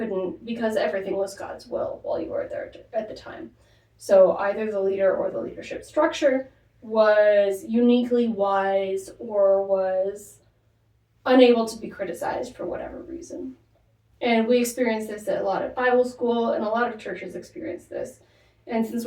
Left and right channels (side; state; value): both; identical; correlation 1.00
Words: because everything was God's will while you were there at the time. So either the leader or the leadership structure was uniquely wise or was unable to be criticized for whatever reason. And we experience this a lot at Bible school, and a lot of churches experience this. And since